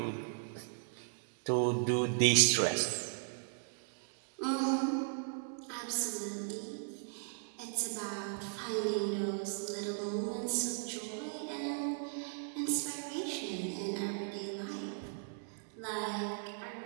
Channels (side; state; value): left; silent; digital silence